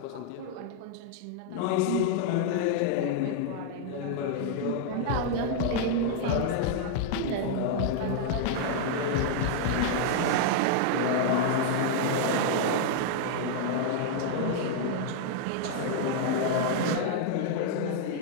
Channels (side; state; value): both; different; correlation -0.01